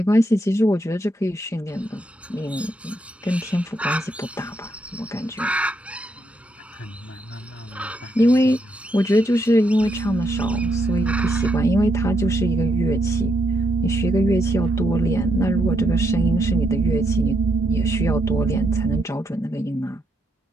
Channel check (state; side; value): normal; both; correlation 0.78